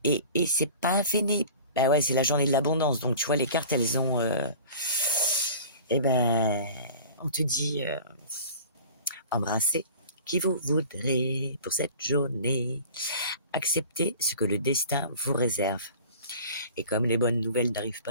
c'est pas fini. Ben ouais, c'est la journée de l'abondance. Donc tu vois, les cartes, elles ont... on te dit, embrassez qui vous voudrez pour cette journée. Acceptez ce que le destin vous réserve. Et comme les bonnes nouvelles n'arrivent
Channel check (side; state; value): both; inverted; correlation -0.42